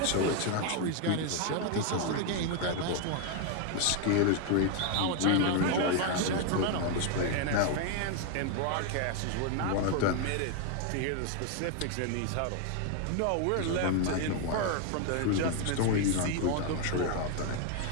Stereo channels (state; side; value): different; both; correlation 0.01